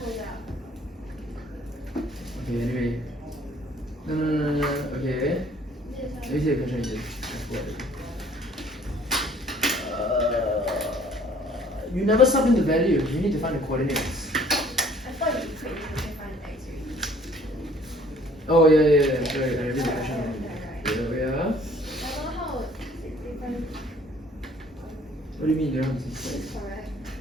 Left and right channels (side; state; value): both; normal; correlation 0.57